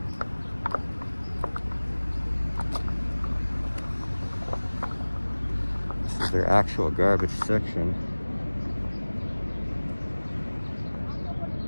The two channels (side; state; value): both; inverted; correlation -1.00